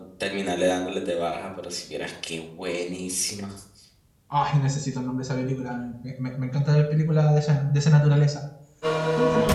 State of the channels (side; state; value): both; identical; correlation 1.00